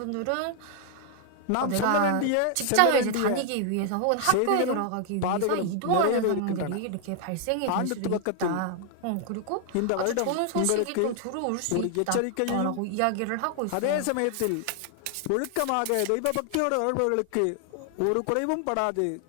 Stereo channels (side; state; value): both; different; correlation 0.00